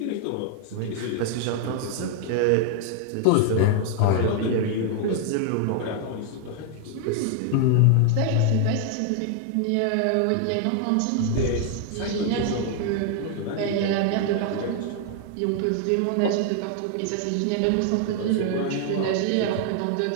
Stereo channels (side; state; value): both; different; correlation 0.00